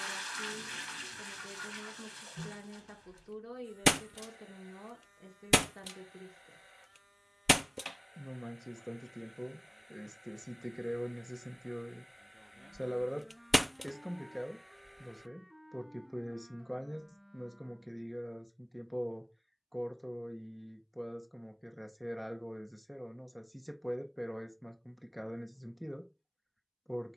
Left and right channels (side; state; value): both; identical; correlation 1.00